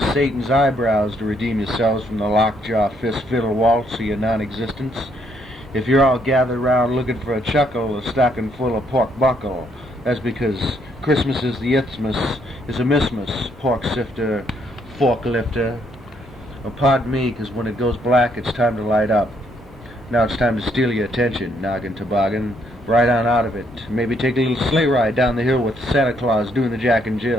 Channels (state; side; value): normal; both; correlation 0.71